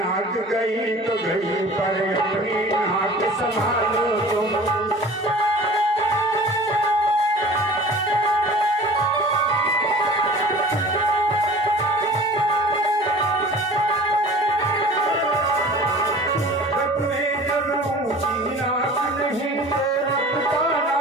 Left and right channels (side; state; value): both; normal; correlation 0.43